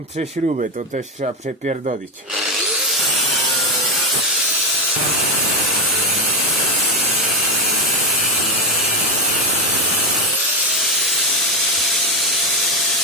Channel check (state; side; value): normal; both; correlation 0.11